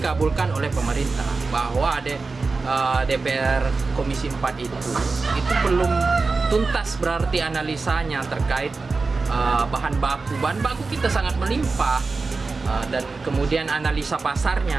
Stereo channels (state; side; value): quieter; left; 4.0 dB